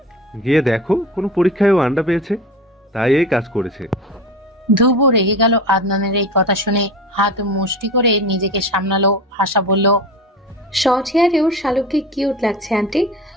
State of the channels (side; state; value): both; normal; correlation 0.30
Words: গিয়ে দেখো, কোনো পরীক্ষায়ও আন্ডা পেয়েছে, তাই এই কাজ করেছে। ধ্রুব রেগে গেল আদনানের এই কথা শুনে। হাত মুষ্টি করে নিজেকে সামলালো। আশা বলল, শর্ট হেয়ারেও শালুককে কিউট লাগছে আন্টি,